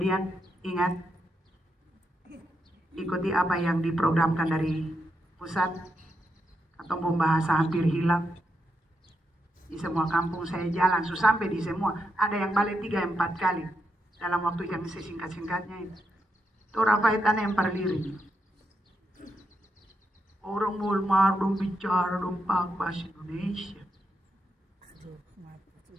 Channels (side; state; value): both; normal; correlation 0.83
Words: ingat, ikuti apa yang diprogramkan dari pusat, atau bahasa hampir hilang. Di semua kampung saya jalan, sampai di semua, ada yang balik 3-4 kali, dalam waktu yang sesingkat-singkatnya itu. Itu rapaitan yang perlirik. Orang mulmar dong bicara dong bahasa Indonesia.